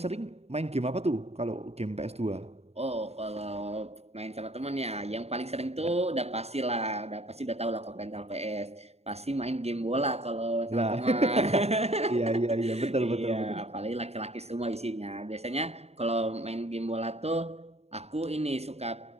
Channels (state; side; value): late; left; 0.30 ms